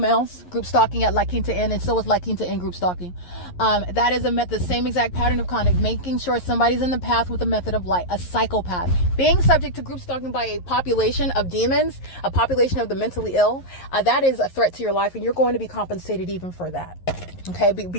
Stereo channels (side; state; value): right; late; 11 ms